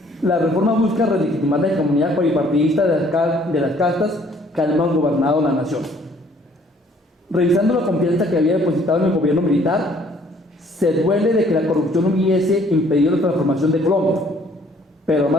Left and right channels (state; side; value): normal; both; correlation 0.60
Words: la reforma busca relegitimar la hegemonía bipartidista de las castas que han gobernado la nación. Revisando la confianza que había depositado en el gobierno militar, se duele de que la corrupción hubiese impedido la transformación de Colombia, pero